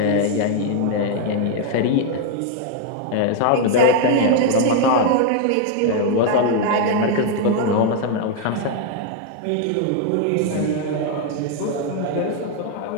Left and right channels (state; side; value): different; both; correlation 0.00